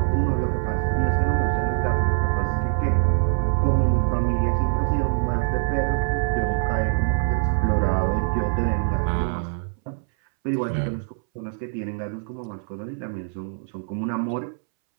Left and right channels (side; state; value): left; silent; 63 dB below the other